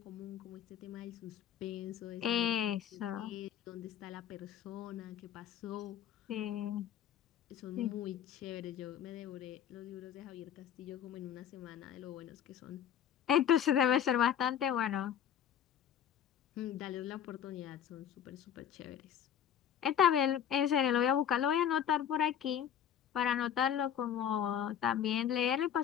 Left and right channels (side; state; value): right; quieter; 9.3 dB